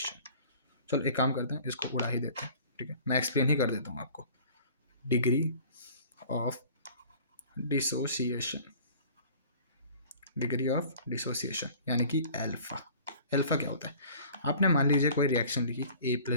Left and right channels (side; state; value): both; inverted; correlation -0.48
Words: चलो एक काम करते हैं, इसको उड़ा ही देते हैं। ठीक है, मैं एक्सप्लेन ही कर देता हूँ आपको। Degree of dissociation, degree of dissociation यानी कि अल्फा। अल्फा क्या होता है, आपने मान लीजिए कोई रिएक्शन लिखी